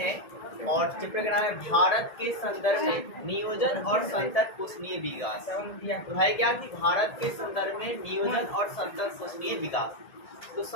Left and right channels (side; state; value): right; late; 1.7 ms